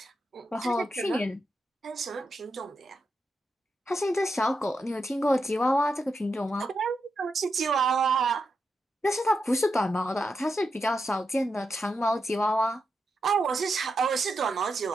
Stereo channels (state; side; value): normal; both; correlation 0.86